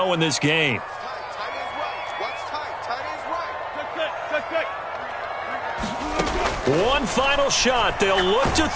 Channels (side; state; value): both; identical; correlation 1.00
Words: in this game. One final shot. They'll look to